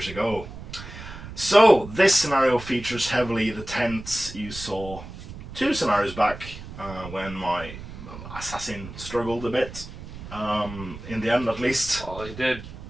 ago. So this scenario features heavily the tents you saw 2 scenarios back when my assassin struggled a bit, in the end at least. Well, he did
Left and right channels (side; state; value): right; noise; rumble, 13 dB below the sound